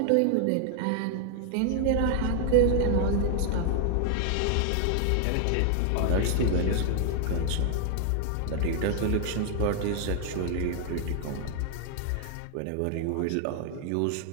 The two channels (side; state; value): both; different; correlation 0.00